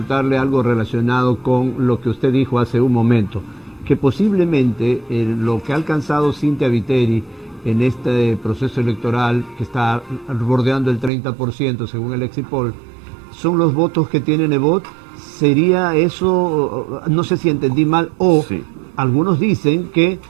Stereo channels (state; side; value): drops out; left; at 11.1 s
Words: algo relacionado con lo que usted dijo hace un momento, que posiblemente lo que ha alcanzado Cynthia Viteri en este proceso electoral, que está bordeando el 30% según el Exit Poll, son los votos que tiene Nebot. ¿Sería eso, no sé si entendí mal, o Sí. algunos dicen que